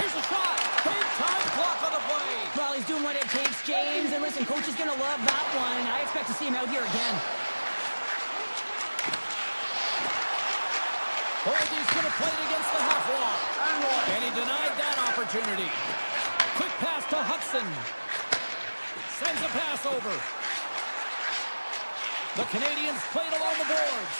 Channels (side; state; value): both; inverted; correlation -1.00